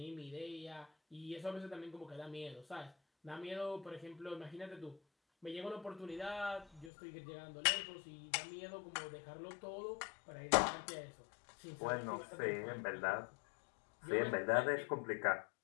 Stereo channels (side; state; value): right; drops out; at 6.9 s